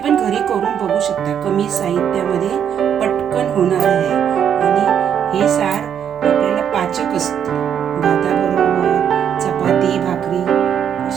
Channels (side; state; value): left; quieter; 8.7 dB